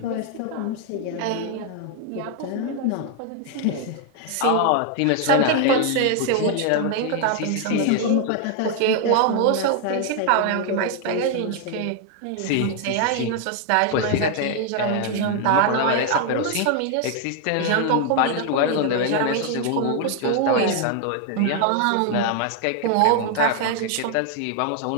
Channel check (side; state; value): both; different; correlation 0.00